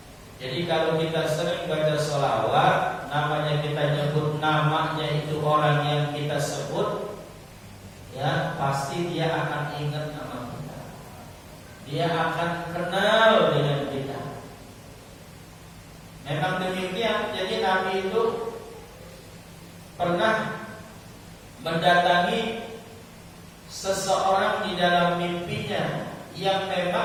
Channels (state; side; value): identical; both; correlation 1.00